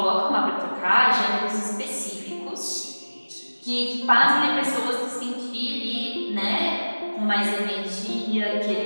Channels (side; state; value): both; inverted; correlation -1.00